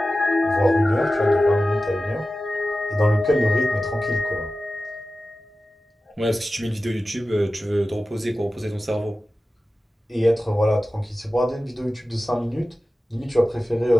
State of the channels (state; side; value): normal; both; correlation 0.94